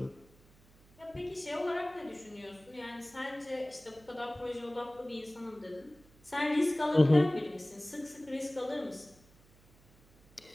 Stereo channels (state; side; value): noise; right; hum, 27 dB below the sound